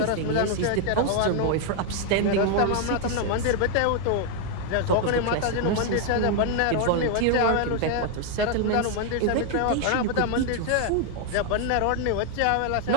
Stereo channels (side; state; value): both; different; correlation 0.00